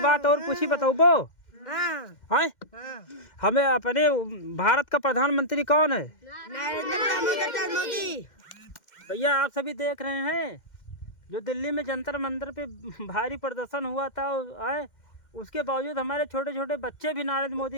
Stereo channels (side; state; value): right; late; 2.1 ms